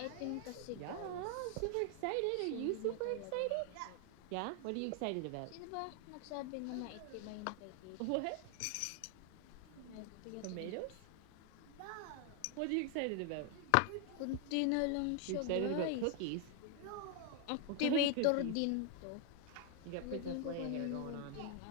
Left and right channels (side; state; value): both; different; correlation 0.00